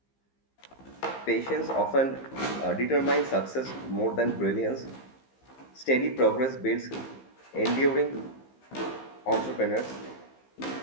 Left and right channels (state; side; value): late; right; 15 ms